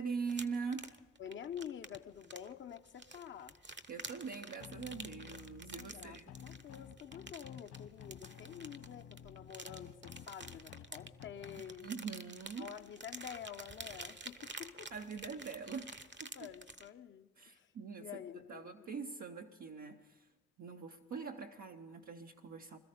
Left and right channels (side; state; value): both; normal; correlation 0.41